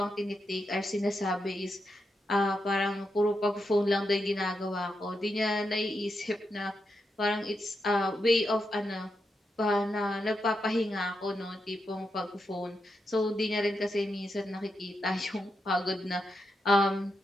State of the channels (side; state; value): both; normal; correlation 0.85